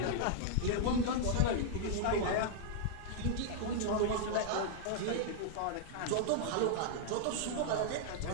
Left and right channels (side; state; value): both; different; correlation -0.01